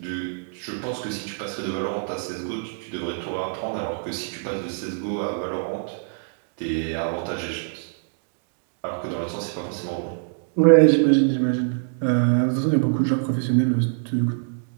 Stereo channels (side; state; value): left; silent; digital silence